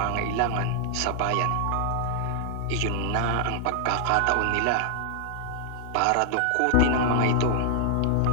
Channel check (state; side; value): different; both; correlation -0.01